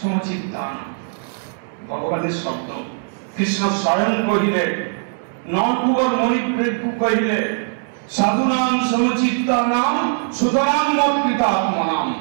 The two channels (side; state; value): left; silent; digital silence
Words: ভগবানের শব্দ কৃষ্ণ স্বয়ং কহিলে, নরকুবর মণিপ্রেক্ষু কহিলে, সাধুনাম সমচিত্তানাম সুতরাং মৎকৃতাত্মনাম।